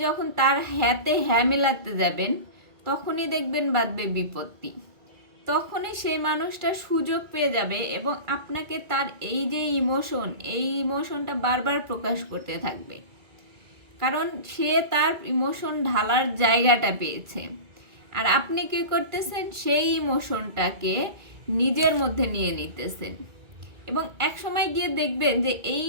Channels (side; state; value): left; late; 2.2 ms